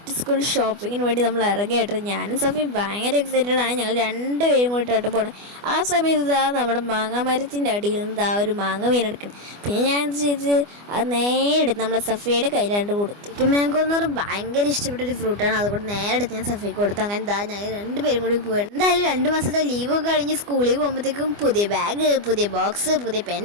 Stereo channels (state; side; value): late; left; 24 ms